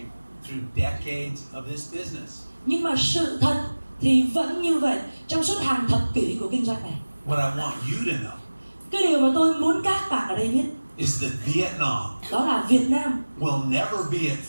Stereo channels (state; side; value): inverted; both; correlation -1.00